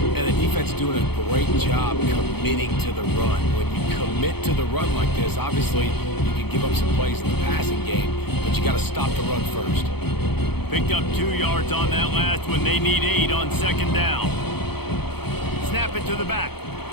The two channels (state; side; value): late; right; 0.97 ms